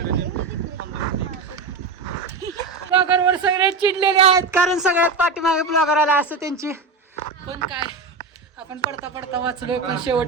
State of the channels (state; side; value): quieter; left; 4.0 dB